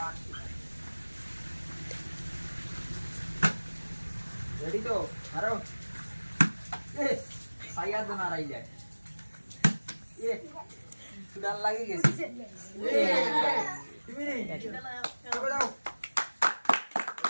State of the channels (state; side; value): inverted; both; correlation -1.00